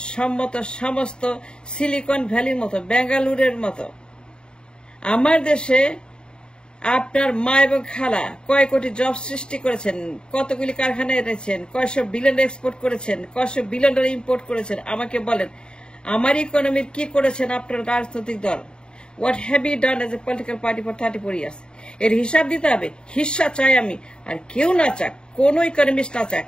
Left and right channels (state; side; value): late; right; 0.049 ms